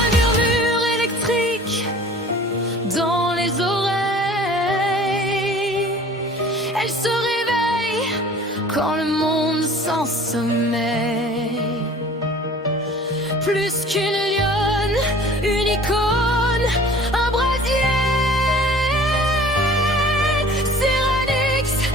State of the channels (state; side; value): normal; both; correlation 0.47